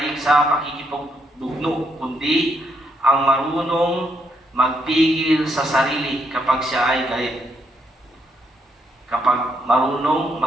sa pakikipagdugno, kundi ang marunong magpigil sa sarili kapag siya ay galit. Kapag marunong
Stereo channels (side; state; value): both; normal; correlation 0.75